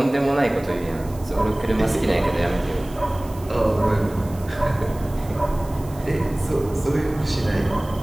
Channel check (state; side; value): noise; right; hiss, 22 dB below the sound